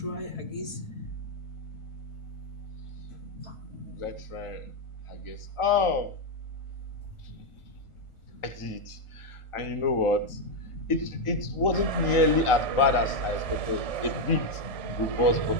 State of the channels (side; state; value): right; late; 1.4 ms